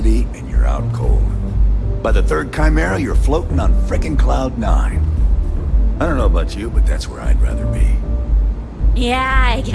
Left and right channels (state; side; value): identical; both; correlation 1.00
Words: and you're out cold. By the third Chimera, you're floating on frickin' Cloud 9. I don't know about you, but that's where I'd rather be. Yeah, I